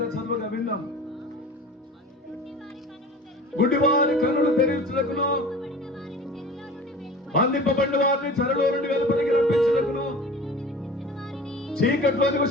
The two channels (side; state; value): both; normal; correlation 0.39